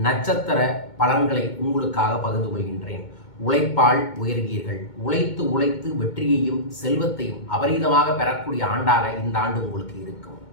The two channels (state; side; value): late; right; 2.2 ms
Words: நட்சத்திர பலன்களை உங்களுக்காக பகிர்ந்து கொள்கின்றேன். உழைப்பால் உயர்வீர்கள். உழைத்து உழைத்து வெற்றியையும் செல்வத்தையும் அபரீதமாக பெறக்கூடிய ஆண்டாக இந்த ஆண்டு உங்களுக்கு இருக்கும்.